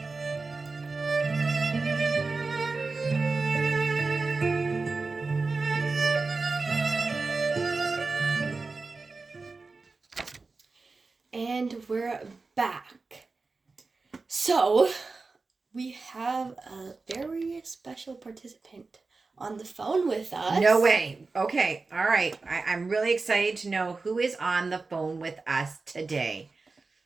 And we're back. So, we have a very special participant on the phone with us. No way. Okay. All right. I'm really excited to know who is on the phone with us today.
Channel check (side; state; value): left; quieter; 3.9 dB